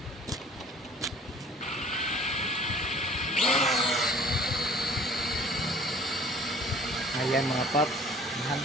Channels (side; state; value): both; normal; correlation 0.50